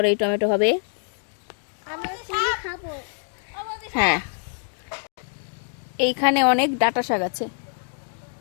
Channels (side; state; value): right; silent; 62 dB below the other